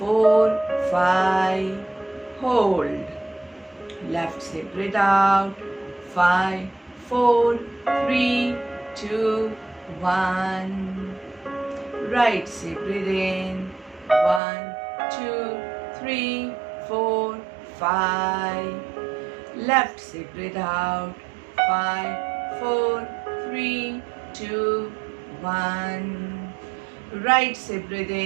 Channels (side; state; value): left; drops out; at 14.4 s